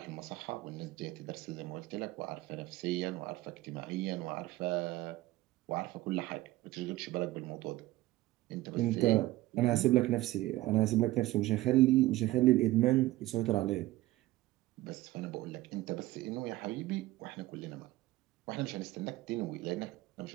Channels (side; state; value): left; quieter; 17.4 dB